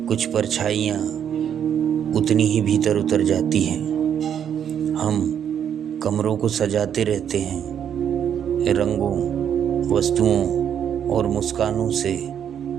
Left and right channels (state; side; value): quieter; left; 8.8 dB